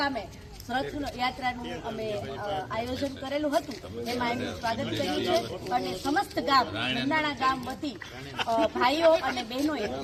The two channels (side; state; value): both; identical; correlation 1.00